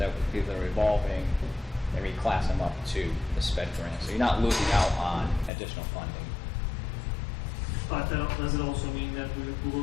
would be the revolving and reclass them up to the sped grant. So you're not losing out on additional funding. But does it also mean that we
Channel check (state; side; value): drops out; right; at 5.5 s